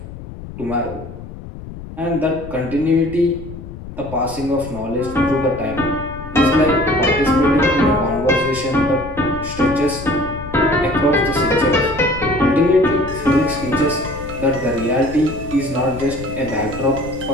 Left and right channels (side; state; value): left; noise; rumble, 13 dB below the sound